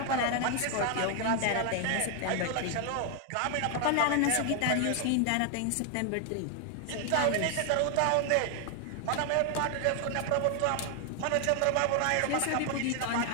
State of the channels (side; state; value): both; different; correlation 0.00